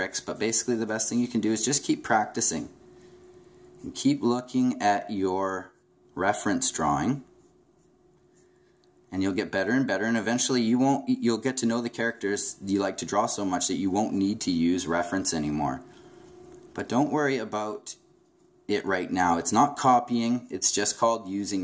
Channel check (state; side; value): identical; both; correlation 1.00